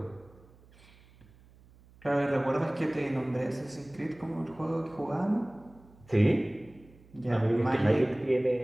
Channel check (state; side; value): noise; right; hum, 26 dB below the sound